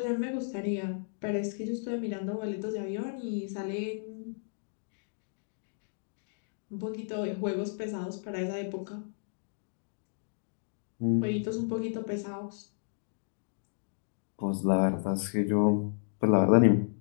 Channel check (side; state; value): right; silent; digital silence